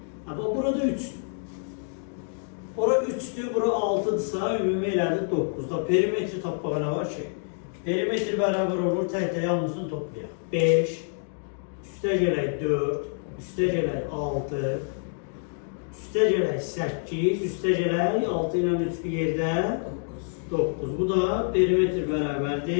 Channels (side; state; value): right; silent; 60 dB below the other